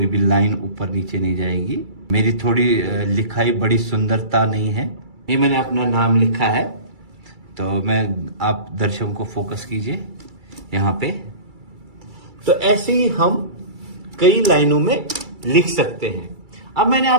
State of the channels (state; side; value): late; left; 2.3 ms